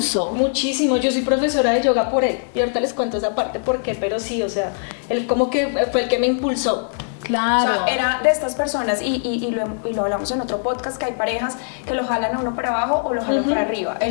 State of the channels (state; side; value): silent; right; digital silence